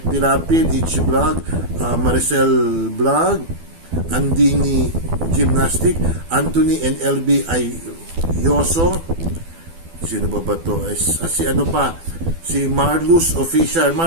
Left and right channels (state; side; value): late; left; 12 ms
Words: Pirapid, Ichi Vlog, Maricel Vlog, Andini Gymnastic, Anthony and LB Yoso, sino ba to? Si ano pa, si Marlus Official.